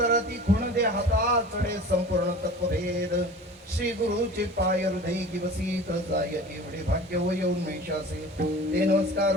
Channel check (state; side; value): normal; both; correlation 0.39